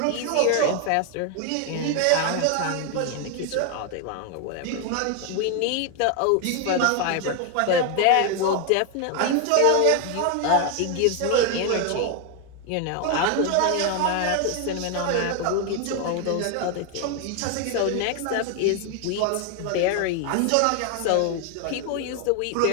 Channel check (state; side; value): different; both; correlation 0.01